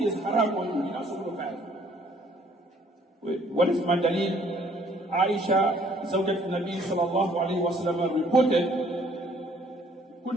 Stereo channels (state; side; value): normal; both; correlation 0.61